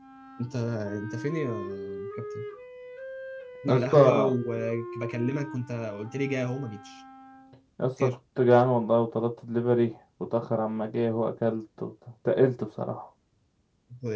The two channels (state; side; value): identical; both; correlation 1.00